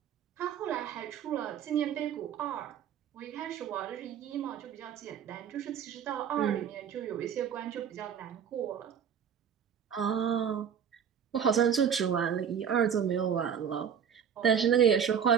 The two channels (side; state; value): left; quieter; 8.0 dB